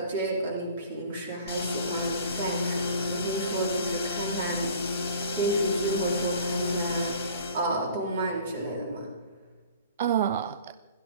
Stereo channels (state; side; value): inverted; both; correlation -0.47